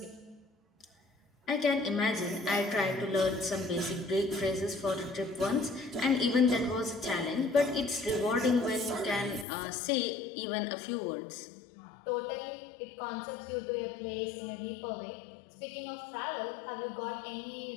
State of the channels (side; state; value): right; drops out; at 9.5 s